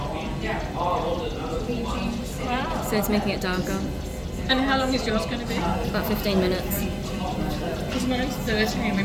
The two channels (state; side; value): identical; both; correlation 1.00